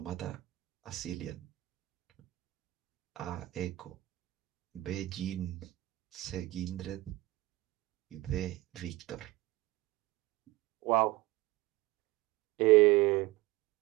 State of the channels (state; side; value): quieter; left; 18.8 dB